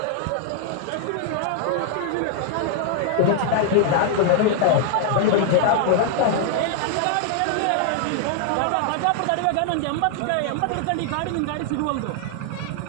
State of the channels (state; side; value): different; both; correlation 0.00